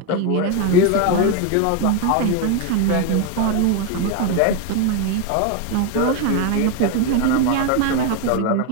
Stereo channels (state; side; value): different; both; correlation 0.02